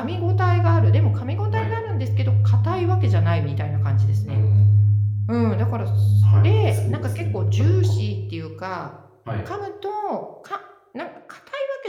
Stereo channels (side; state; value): both; identical; correlation 1.00